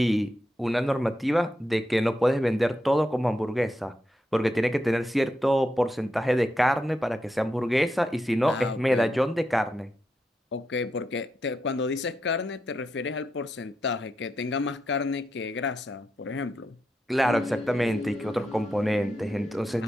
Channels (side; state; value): both; normal; correlation 0.85